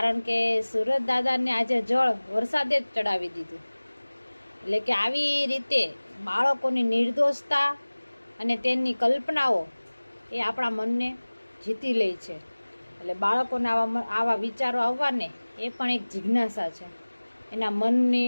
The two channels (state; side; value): inverted; both; correlation -1.00